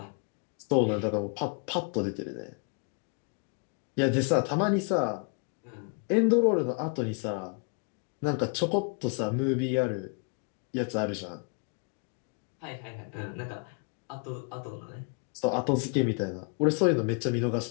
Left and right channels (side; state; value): right; quieter; 39.3 dB